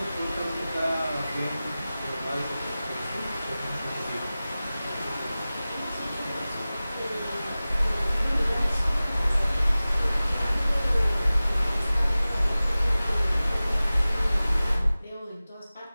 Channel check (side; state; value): both; inverted; correlation -0.97